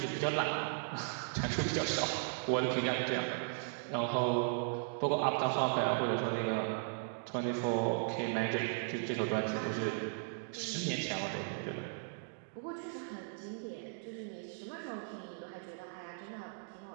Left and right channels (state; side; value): silent; left; digital silence